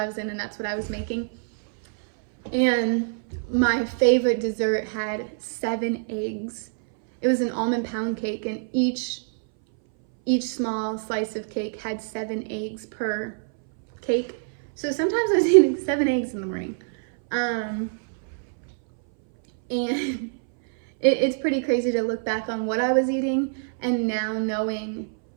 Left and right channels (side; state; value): left; silent; 61 dB below the other